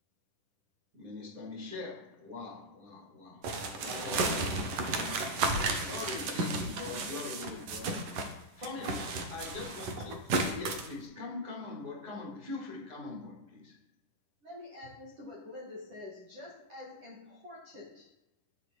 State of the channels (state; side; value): late; left; 10 ms